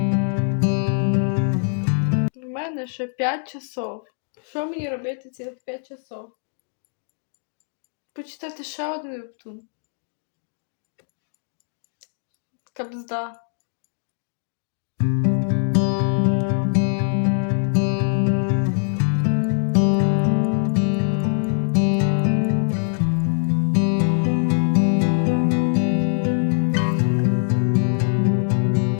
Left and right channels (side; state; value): right; silent; digital silence